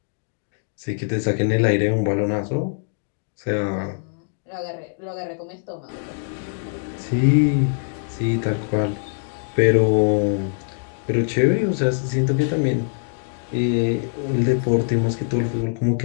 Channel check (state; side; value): silent; right; digital silence